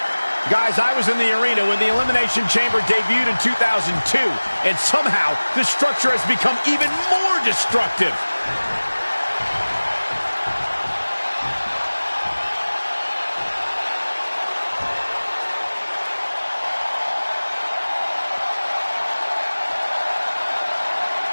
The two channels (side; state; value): both; inverted; correlation -1.00